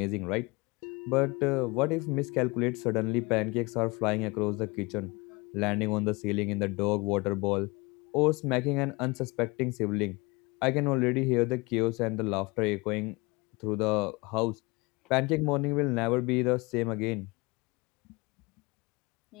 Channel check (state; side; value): quieter; right; 25.5 dB